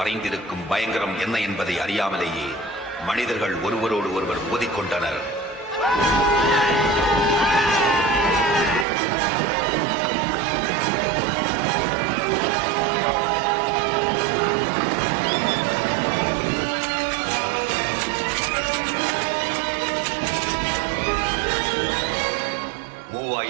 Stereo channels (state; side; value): drops out; left; at 8.8 s